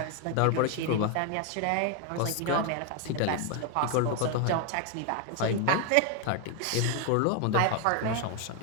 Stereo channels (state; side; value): different; both; correlation 0.01